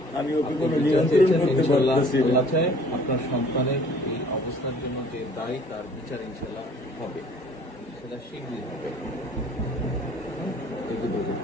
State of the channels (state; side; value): late; right; 1.1 ms